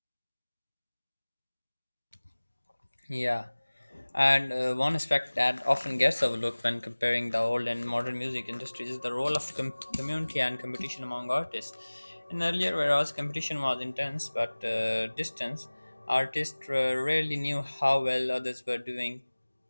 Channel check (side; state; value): both; inverted; correlation -1.00